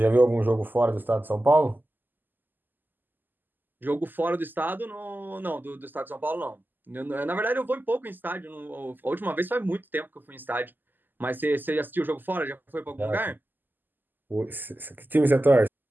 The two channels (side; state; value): left; late; 0.089 ms